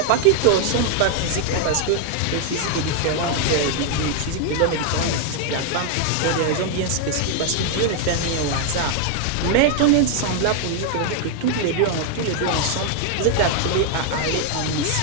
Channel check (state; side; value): different; both; correlation 0.00